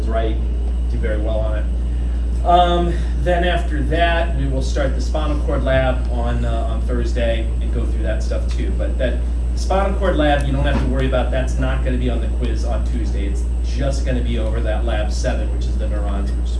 right, do very well on it. Then after that, we will start the spinal cord lab on Thursday and go through that stuff too. But that spinal cord lab, you don't have to worry about. That's not going to be on the quiz on Tuesday. It's just going to be over that lab 7, which is the neurons, which is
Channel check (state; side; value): identical; both; correlation 1.00